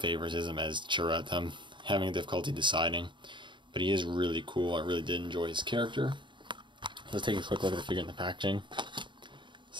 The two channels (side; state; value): left; late; 0.23 ms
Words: as Chirrut. I'm having difficulty deciding. But he is really cool. I really did enjoy his character. Let's take a quick look at the figure in the packaging.